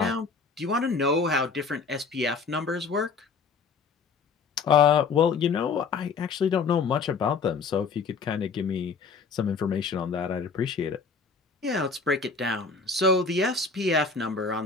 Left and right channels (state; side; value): quieter; right; 4.9 dB